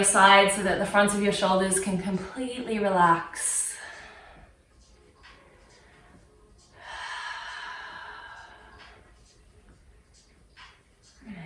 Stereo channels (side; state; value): both; identical; correlation 1.00